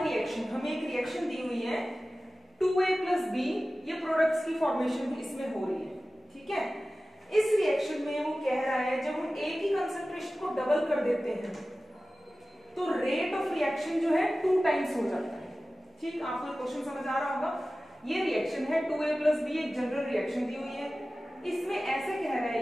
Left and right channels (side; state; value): both; normal; correlation 0.96